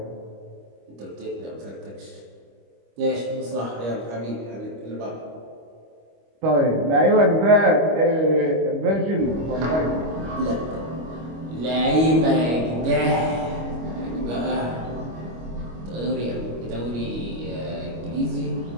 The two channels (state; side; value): late; left; 25 ms